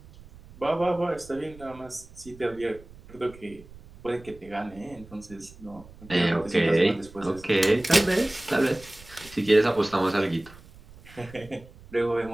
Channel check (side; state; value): right; noise; rumble, 21 dB below the sound